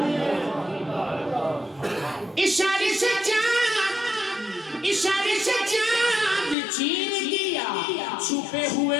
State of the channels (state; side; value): drops out; right; at 6.6 s